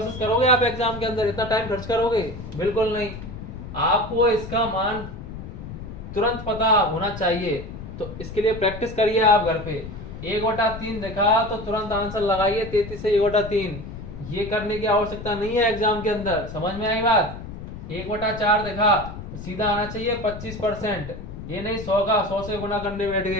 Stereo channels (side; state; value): left; noise; rumble, 11 dB below the sound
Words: करोगे आप एग्जाम के अंदर? इतना टाइम खर्च करोगे? बिल्कुल नहीं। आपको इसका मान तुरंत पता होना चाहिए, तो इसके लिए प्रैक्टिस करिए आप घर पे। 1/3 देखा तो तुरंत आंसर लगाइए 33 से 1/3। ये करने की आवश्यकता नहीं है एग्जाम के अंदर। समझ में आई बात? 1/4 देखा तो सीधा आना चाहिए 25%। ये नहीं 100 से गुना करने बैठ